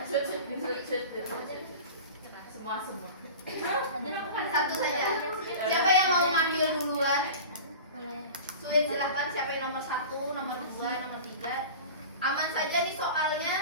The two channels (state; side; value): inverted; both; correlation -0.36